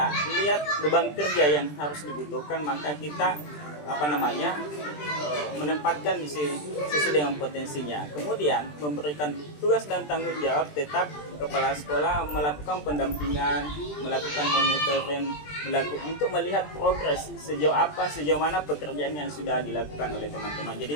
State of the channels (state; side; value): late; right; 20 ms